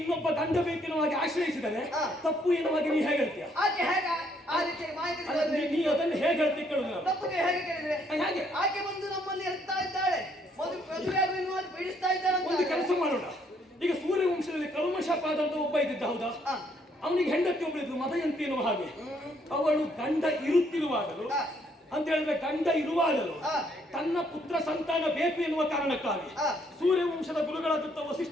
ಗಂಡ ಬೇಕೆನ್ನುವ ಹಾಗೆ ಆಶ್ರಯಿಸಿದರೆ ತಪ್ಪು ಎನ್ನುವಾಗ ನೀ ಹೇಗೆ ಹೇಳ್ತೀಯ? ಆಕೆ ಹೇಗೆ ಆ ರೀತಿ ಮಾಹಿತಿ ನೀ ಅದನ್ನು ಹೇಗೆ ಹೇಳ್ತಿ ಕೇಳುದು? ತಪ್ಪಿಗೆ ಹೇಗೆ ಕೇಳಿದ್ರೆ ಹಾಗೆ ಆಕೆ ಬಂದು ನಮ್ಮಲ್ಲಿ ಇರ್ತಾ ಇದ್ದಾಳೆ, ಮದುವೆ ಆಗುವ ಪೀಡಿಸ್ತಾ ಇದ್ದಾಳೆ. ಒಂದು ಕೆಲಸ ಮಾಡೋಣ. ಈಗ ಸೂರ್ಯವಂಶದಲ್ಲಿ ಕಲ್ಮಶಪಾದ ಅಂತ ಒಬ್ಬ ಇದ್ದಿದ್ದ, ಹೌದಾ? ಅವನಿಗೆ ಹೆಂಡತಿ ಒಬ್ಬಳಿದ್ರು ಮದಯಂತಿ ಎನ್ನುವ ಹಾಗೆ. ಅವಳು ಗಂಡ ಇರುತ್ತಿರುವಾಗಲು ಅಂತ ಹೇಳಿದ್ರೆ ಗಂಡ ಇರುವಾಗಲು ತನ್ನ ಪುತ್ರ ಸಂತಾನ ಬೇಕು ಎನ್ನುವ ಕಾರಣಕ್ಕಾಗಿ ಸೂರ್ಯವಂಶದ ಗುರುಗಳಾದಂತ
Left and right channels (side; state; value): both; normal; correlation 0.69